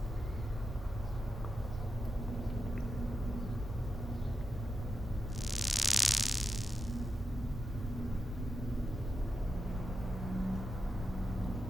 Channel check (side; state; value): both; normal; correlation 0.89